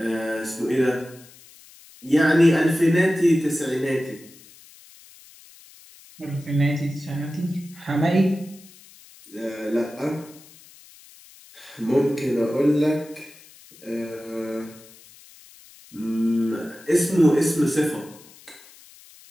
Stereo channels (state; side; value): noise; left; hiss, 23 dB below the sound